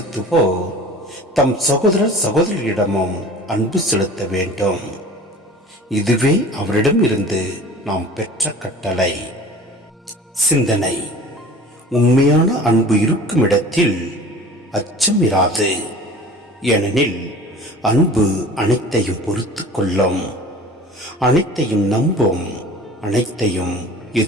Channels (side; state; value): both; normal; correlation 0.42